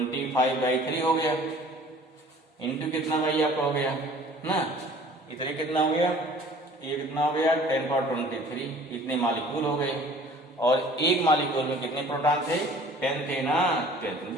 हो गया, इंटू कितना भाई आपका हो गया ना, इतने कितना हो गया, ये कितना हो गया 10 पावर 23, इतने मॉलिक्यूल हो गए। और एक मॉलिक्यूल में कितने प्रोटॉन थे, 10 थे ना, 10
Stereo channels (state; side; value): normal; both; correlation 0.50